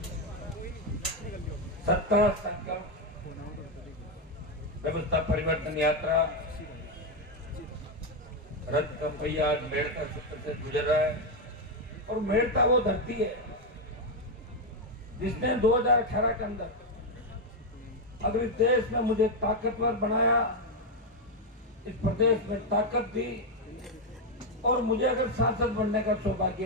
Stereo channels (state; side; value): normal; both; correlation 0.05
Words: सत्ता संकल्प व्यवस्था परिवर्तन यात्रा रथ का पहिया आज मेड़ता सूत्र से गुजर रहा है। और मेड़ता वो धरती है जिसने 2018 के अंदर अगर इस देश में मुझे ताकतवर बनाया, इस प्रदेश में ताकत दी और मुझे अगर सांसद बनने का